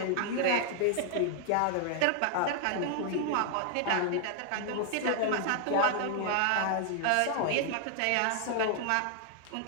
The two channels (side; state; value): both; different; correlation 0.00